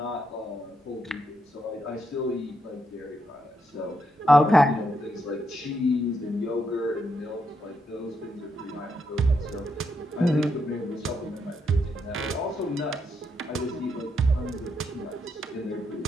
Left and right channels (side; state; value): both; normal; correlation 0.79